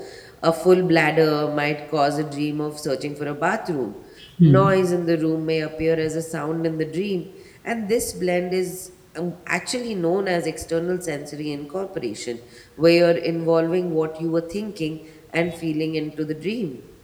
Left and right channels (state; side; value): identical; both; correlation 1.00